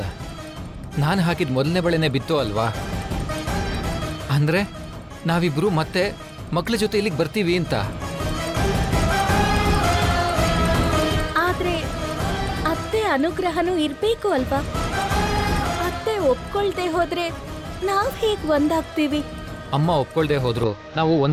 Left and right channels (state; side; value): identical; both; correlation 1.00